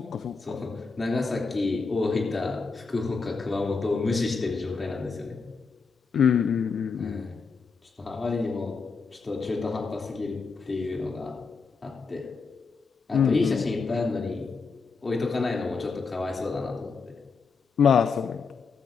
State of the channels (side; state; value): right; quieter; 4.8 dB